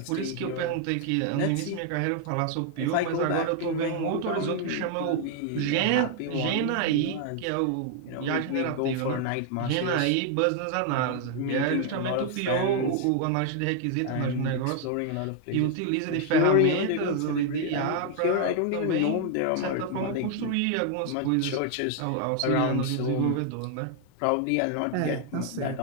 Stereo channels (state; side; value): different; both; correlation 0.00